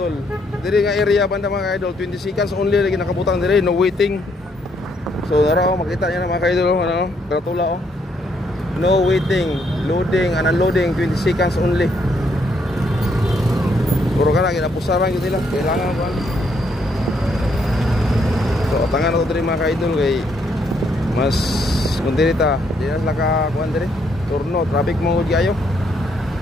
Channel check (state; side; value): normal; both; correlation 0.72